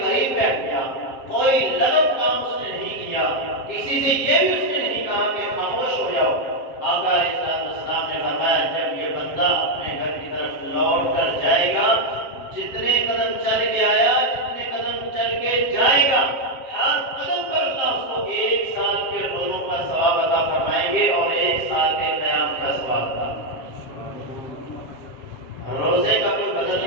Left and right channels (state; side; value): late; right; 7.5 ms